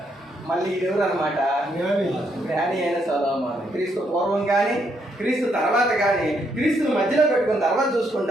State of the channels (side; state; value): both; normal; correlation 0.75